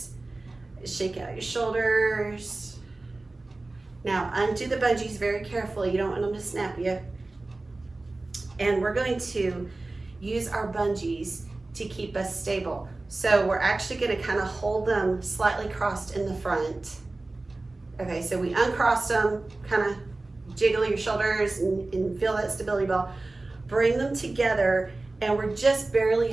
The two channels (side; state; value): left; quieter; 3.1 dB